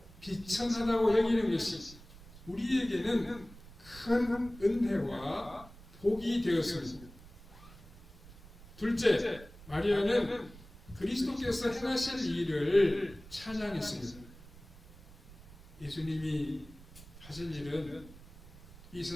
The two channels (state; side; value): noise; right; rumble, 20 dB below the sound